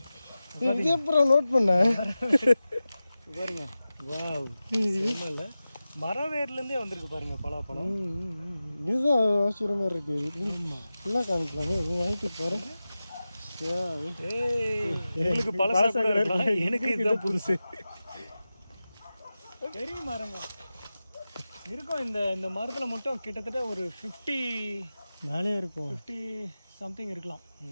நோட் பண்ண பாருங்க. வாவ், இல்லை மரம் வேர்லேருந்தே வந்திருக்கு பாருங்க பலாப்பழம். இதுதான் ஆச்சரியமா இருக்கு. ஃபுல்லாக காமிக்கலாமே, வாங்கிட்டு பாருங்க. உங்களுக்கு பழசா இருக்கலாம், எனக்கு இதுதான் புதுசு. பெரிய மரங்க இருக்கும். இந்த மரத்தில் மட்டும் கிட்டத்தட்ட ஒரு 50 மேலே இருக்கும், 50 சம்திங் இருக்கலாம்.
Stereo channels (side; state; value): both; inverted; correlation -0.95